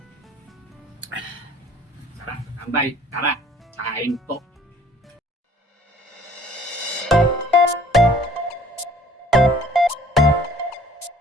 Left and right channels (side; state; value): both; normal; correlation 0.54